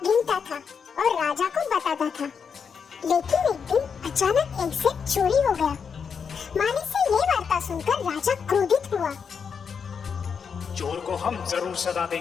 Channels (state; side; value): quieter; right; 6.4 dB